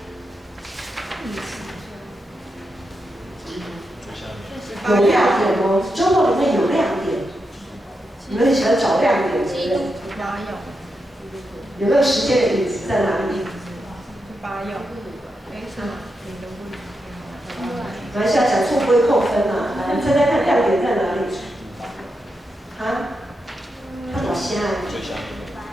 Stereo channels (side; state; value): both; normal; correlation 0.86